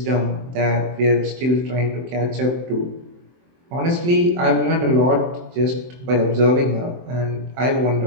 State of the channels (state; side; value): late; left; 23 ms